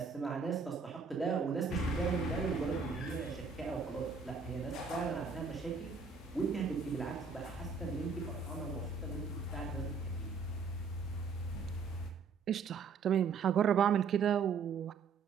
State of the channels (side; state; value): left; quieter; 5.4 dB